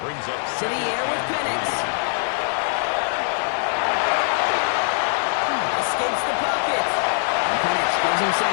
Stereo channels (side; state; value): right; silent; 62 dB below the other